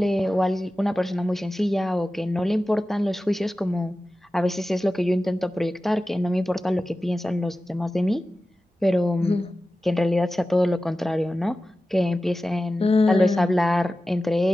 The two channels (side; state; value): both; normal; correlation 0.95